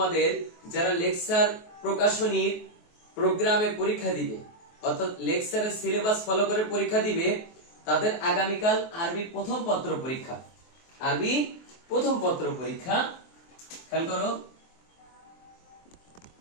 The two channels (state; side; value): late; right; 23 ms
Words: যারা লেকচার প্রকাশনীর প্রোগ্রামে পরীক্ষা দিবে অর্থাৎ লেকচারের সিলেবাস ফলো করে পরীক্ষা দিবে, তাদের আগামীকাল আরবি প্রথম পত্র পরীক্ষা। আরবি প্রথম পত্র পরীক্ষা, খেয়াল করো,